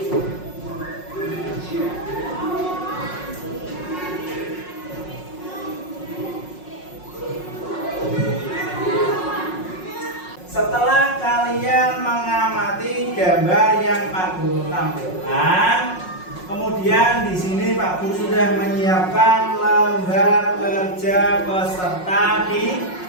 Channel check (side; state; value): right; late; 5.5 ms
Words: Setelah kalian mengamati gambar yang Pak Guru tampilkan, kemudian di sini Pak Guru sudah menyiapkan lembar kerja peserta